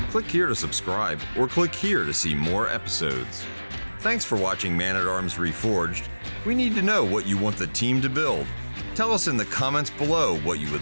Click here to subscribe, or click here to see more episodes. Thanks for watching Man-at-Arms Reforged. We need to know what you want the team to build. Tell us in the comments below what you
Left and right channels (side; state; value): both; inverted; correlation -1.00